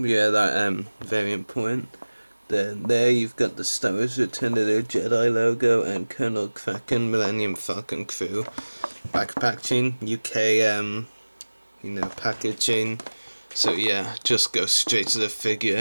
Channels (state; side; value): inverted; both; correlation -1.00